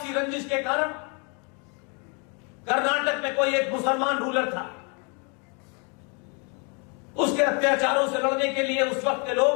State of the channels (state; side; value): quieter; right; 35.2 dB